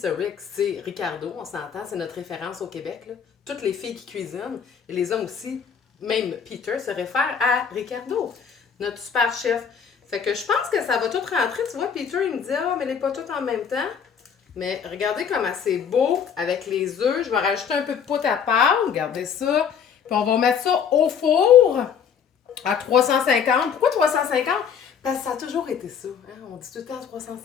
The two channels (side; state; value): right; quieter; 7.3 dB